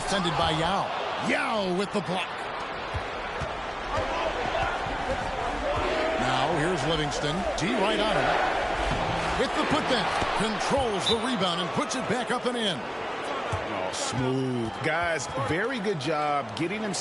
by Yao. Yao with the block. Now here's Livingston. D right on him. With the putback. Controls the rebound and puts it back up and in. Smooth. Guys, very good job getting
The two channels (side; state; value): both; identical; correlation 1.00